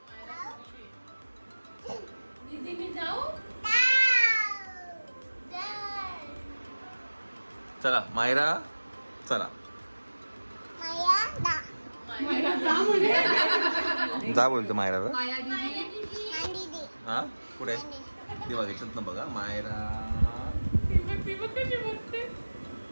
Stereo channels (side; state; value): both; inverted; correlation -1.00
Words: दीदी मी जाऊ. चला मायरा चला. जा बोलतो मायराला. हा कुठे ती बघायचं ना. बघा मायरा.